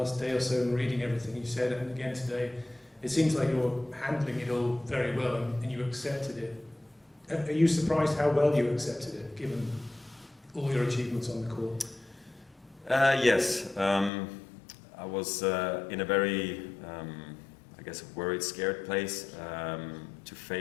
day or so and reading everything you said, and again today, it seems like you're handling it all very well and you accepted it. Are you surprised how well you accepted it, given all your achievements on the court? Yes. I was in a very, I guess, worried, scared place to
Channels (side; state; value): right; drops out; at 14.1 s